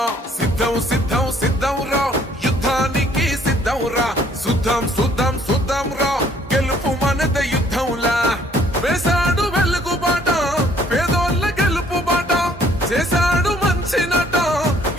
సిద్ధం సిద్ధం సిద్ధం రా యుద్ధానికి సిద్ధం రా సుద్ధం సుద్ధం సుద్ధం రా గెలుపు మనద యుద్ధంలా వేసాడు వెలుగు బాట పేదోళ్ళ గెలుపు బాట చేశాడు మంచి నట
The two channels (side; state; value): both; normal; correlation 0.61